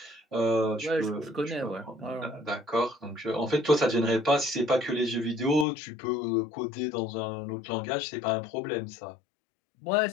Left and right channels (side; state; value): right; drops out; at 5.7 s